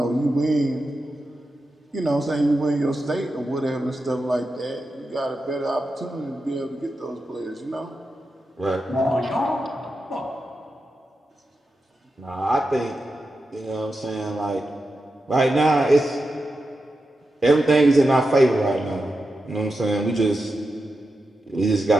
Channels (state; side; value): normal; both; correlation 0.89